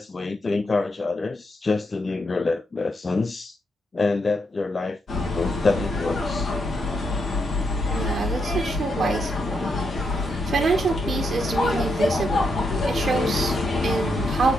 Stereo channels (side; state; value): both; normal; correlation 0.80